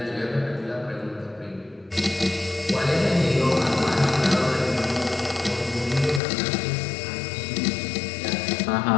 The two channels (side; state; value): right; drops out; at 6.2 s